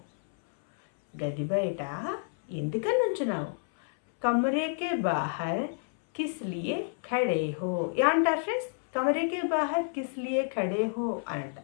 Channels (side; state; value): right; silent; 58 dB below the other